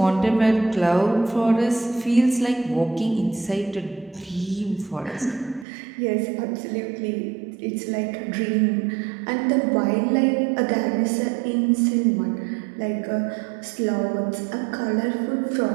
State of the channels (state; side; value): drops out; left; at 5.7 s